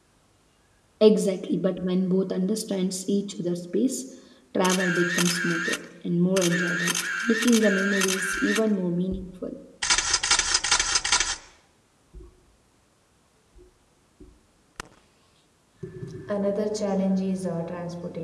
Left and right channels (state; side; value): identical; both; correlation 1.00